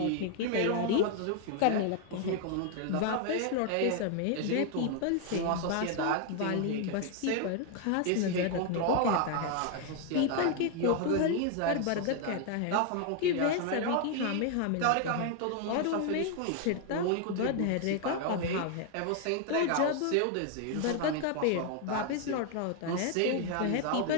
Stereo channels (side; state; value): both; different; correlation 0.00